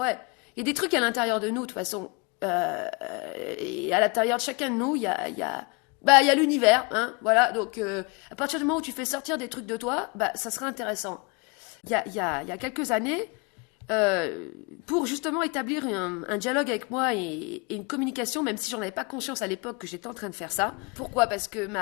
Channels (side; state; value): right; quieter; 30.3 dB